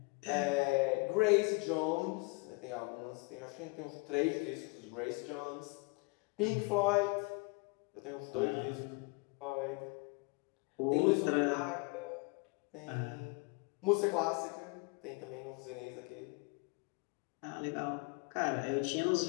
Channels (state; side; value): quieter; right; 29.6 dB